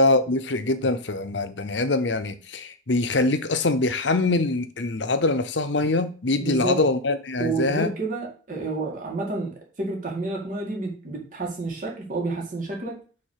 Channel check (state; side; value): normal; both; correlation 0.06